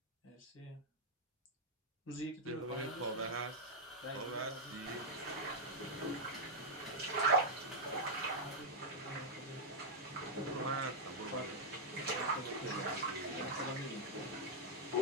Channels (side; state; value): both; normal; correlation -0.04